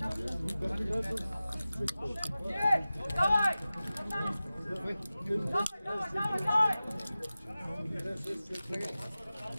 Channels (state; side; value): inverted; both; correlation -0.96